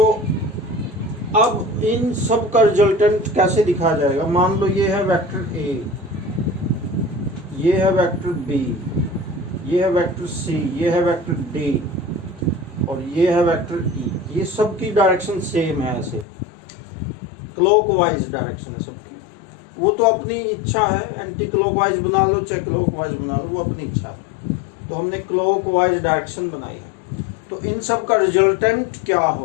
अब इन सब का रिजल्टेंट कैसे दिखाया जाएगा। मान लो ये है वेक्टर ए, ये है वेक्टर बी, ये है वेक्टर सी, ये है वेक्टर डी और ये है वेक्टर ई। ये सब की डायरेक्शन सेम है, ऐसे क्लॉकवाइज डायरेक्शन है सबकी। वो तो अपनी इच्छा है, एंटी क्लॉकवाइज बना लो चाहे क्लॉकवाइज बना लो, वो अपनी इच्छा है। तो हमने क्लॉकवाइज डायरेक्शन बनाई है। तो इन सब का रिजल्टेंट क्या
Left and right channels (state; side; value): drops out; right; at 16.2 s